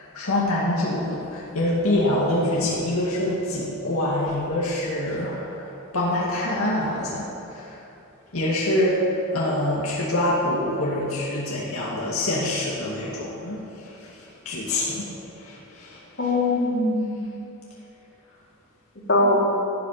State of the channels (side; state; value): both; normal; correlation 0.15